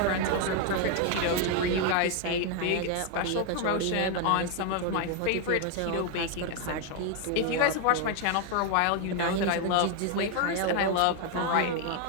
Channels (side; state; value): both; different; correlation 0.01